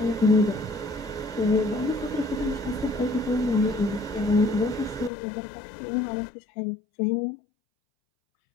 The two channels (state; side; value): drops out; right; at 5.1 s